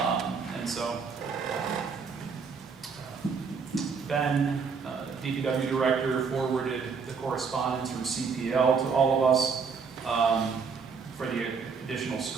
And so Ben, DPW Director, forwarded the correspondence from CPL to all of us. for the additional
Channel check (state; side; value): quieter; left; 5.6 dB